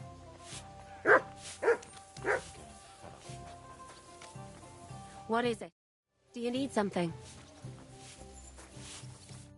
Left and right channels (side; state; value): both; identical; correlation 1.00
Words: What is it? Do you need something?